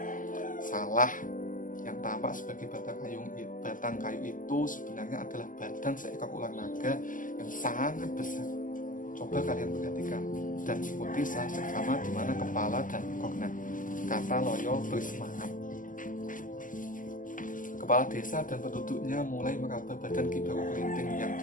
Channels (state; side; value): late; right; 0.38 ms